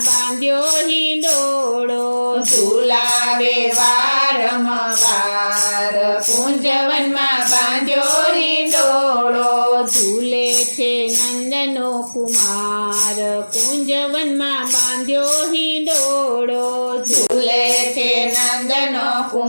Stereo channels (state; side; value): inverted; both; correlation -1.00